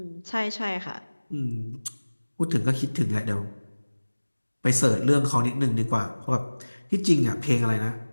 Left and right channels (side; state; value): both; inverted; correlation -1.00